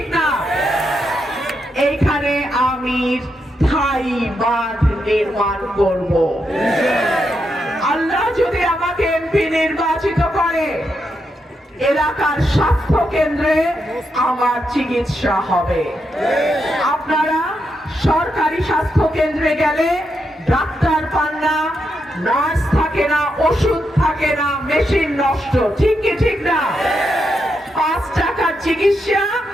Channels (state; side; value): normal; both; correlation 0.83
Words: না? এইখানে আমি স্থায়ী বাঁধ নির্মাণ করব। আল্লাহ যদি আমাকে এমপি নির্বাচিত করে, এলাকার স্বাস্থ্য কেন্দ্রে আমার চিকিৎসা হবে। আপনারা সরকারি স্বাস্থ্য কেন্দ্রে গেলে ডাক্তার পান না, নার্স থাকে না, ওষুধ থাকে না, মেশিন নষ্ট, ঠিক কি ঠিক না? 5 টাকার চিকিৎসা